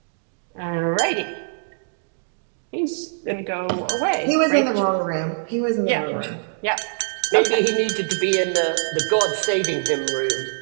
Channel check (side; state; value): left; silent; digital silence